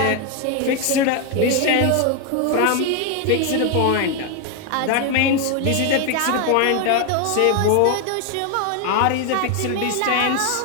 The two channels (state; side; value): different; both; correlation 0.01